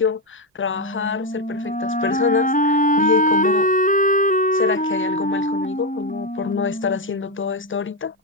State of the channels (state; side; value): normal; both; correlation 0.06